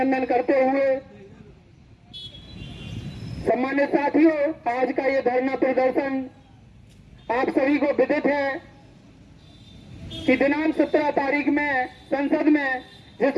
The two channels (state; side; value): identical; both; correlation 1.00